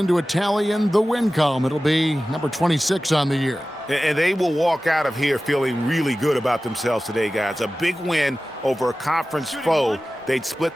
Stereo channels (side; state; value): both; normal; correlation 0.96